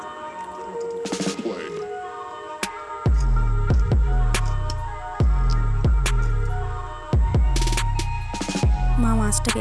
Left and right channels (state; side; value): identical; both; correlation 1.00